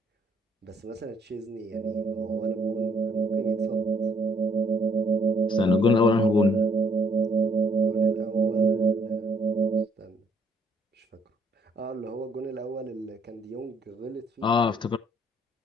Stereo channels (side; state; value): both; normal; correlation 0.66